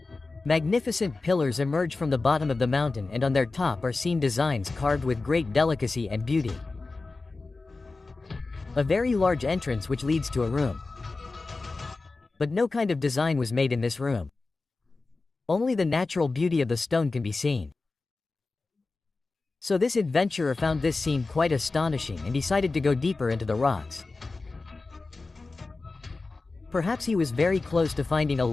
Magnificent pillars emerge from the bottom of the mountain and on their top are seen designs carved with great delicacy and beauty. A very large entrance which leads to a room. But no kind of design was made in this room. Only the natural beauty of the stone can be seen. So this adventurer found this scene quite astonishing and decided to go deeper into the rocks. Perhaps he was very close to finding a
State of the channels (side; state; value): right; quieter; 3.6 dB